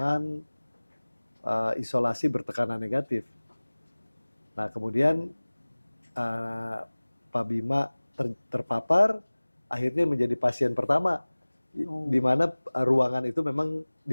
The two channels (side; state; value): both; inverted; correlation -1.00